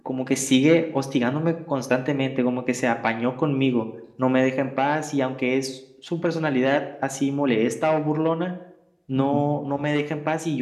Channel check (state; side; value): identical; both; correlation 1.00